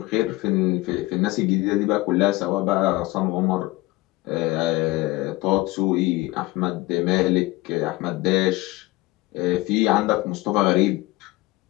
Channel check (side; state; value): right; quieter; 20.2 dB